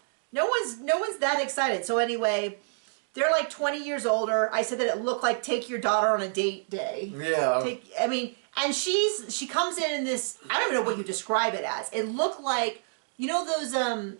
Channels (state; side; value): silent; left; digital silence